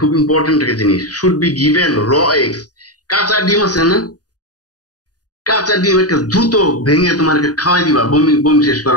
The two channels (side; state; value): right; late; 0.68 ms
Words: খুব ইম্পর্টেন্ট একটা জিনিস, should be given raw eggs. কাঁচা ডিম আছে না, কাঁচা ডিম একটা দ্রুত ভেঙে তোমাকে খাওয়াই দিবা বমি শেষ